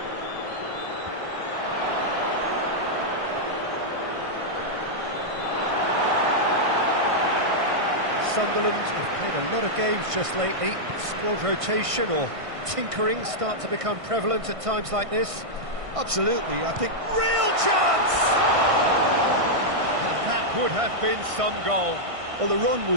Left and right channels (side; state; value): left; late; 1.5 ms